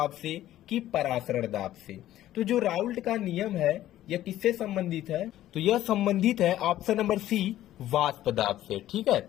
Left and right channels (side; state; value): right; quieter; 13.5 dB